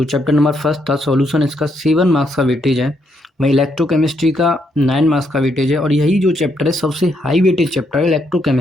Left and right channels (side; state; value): both; normal; correlation 0.76